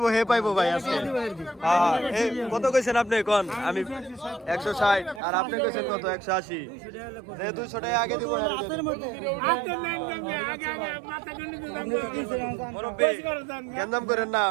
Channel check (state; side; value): drops out; left; at 5.2 s